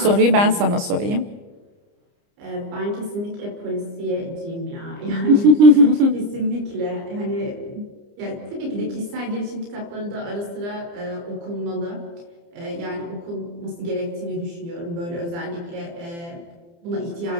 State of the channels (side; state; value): left; late; 29 ms